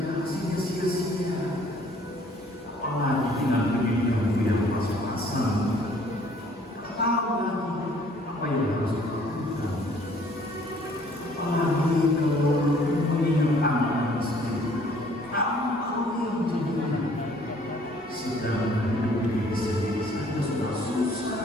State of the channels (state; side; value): normal; both; correlation 0.58